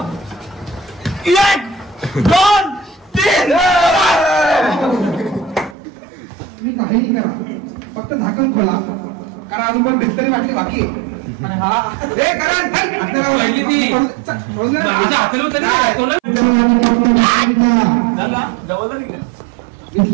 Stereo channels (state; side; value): drops out; left; at 5.8 s